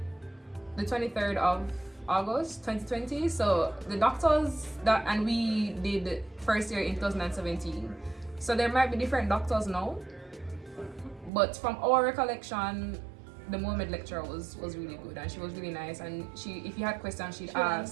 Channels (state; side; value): drops out; left; at 11.3 s